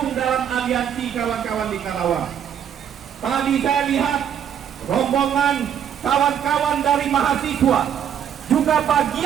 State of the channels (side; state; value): left; quieter; 8.9 dB